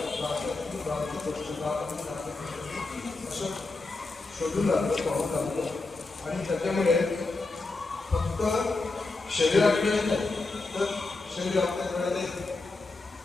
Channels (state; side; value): quieter; right; 3.5 dB